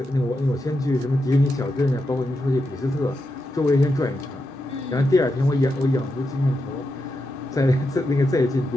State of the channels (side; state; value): both; normal; correlation 0.86